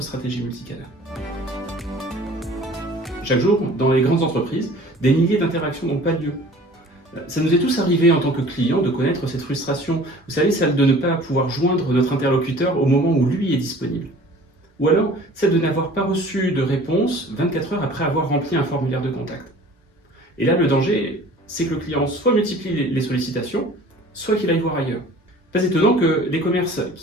stratégie multicanal. Chaque jour, dans les grandes entreprises, des milliers d'interactions n'ont pas lieu. Ça nous est tous arrivé en tant que client de connaître cette frustration, vous savez, celle de ne pas pouvoir joindre notre interlocuteur au moment où lui est disponible. Ou alors, celle de n'avoir pas reçu de réponse 24 heures après avoir rempli un formulaire de contact. Et là, le danger, c'est que le client soit multiplie les sollicitations, soit qu'il aille voir ailleurs. Pas étonnant que les commerces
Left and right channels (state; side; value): normal; both; correlation 0.47